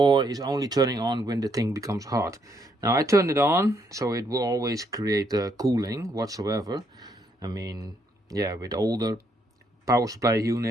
is only turning on when the thing becomes hot. Now I turned it on, so it will always create cooling whatsoever. I mean, yeah, with older power supply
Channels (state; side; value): normal; both; correlation 0.73